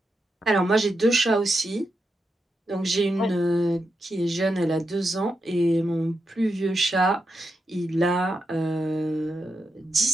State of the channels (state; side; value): normal; both; correlation 0.86